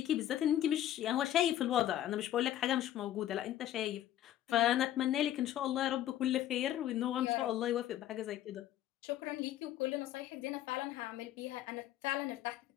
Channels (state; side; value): quieter; right; 12.4 dB